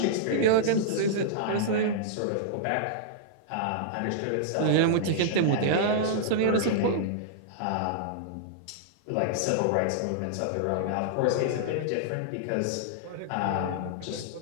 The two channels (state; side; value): different; both; correlation -0.02